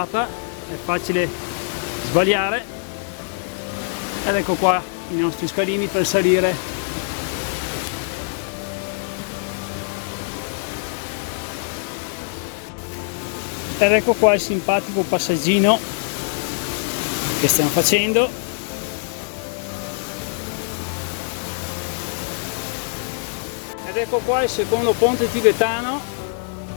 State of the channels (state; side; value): silent; right; digital silence